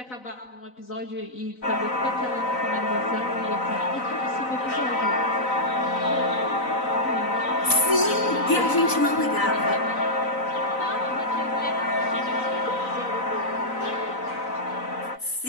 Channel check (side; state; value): right; late; 4.0 ms